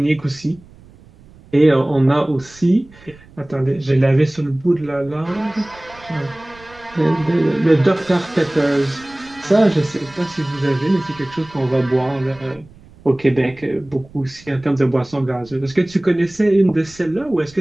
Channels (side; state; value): right; noise; rumble, 24 dB below the sound